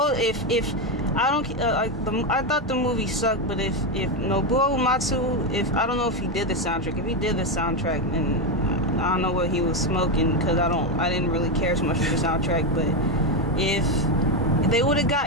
I thought the movie sucked, but if Nobuo Uematsu, I don't know if he did the soundtrack. If he did the soundtrack, then I don't know what he was smoking, because I didn't really care so much for the soundtrack. But if they would have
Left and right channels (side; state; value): both; normal; correlation 0.09